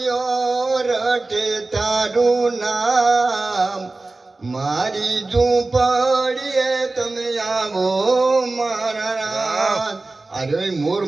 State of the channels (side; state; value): left; quieter; 3.3 dB